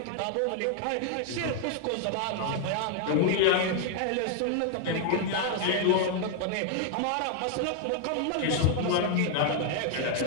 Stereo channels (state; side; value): different; both; correlation 0.00